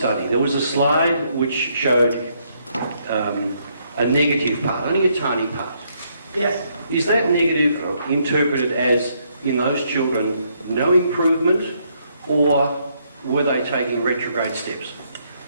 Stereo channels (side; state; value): both; inverted; correlation -0.73